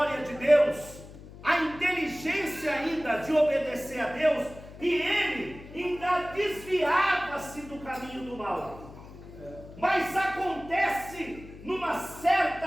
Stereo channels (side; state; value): left; noise; hum, 17 dB below the sound